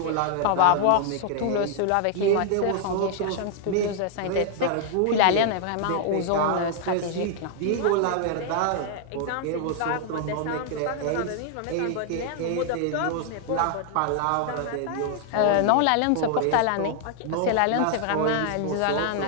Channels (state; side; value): different; both; correlation 0.00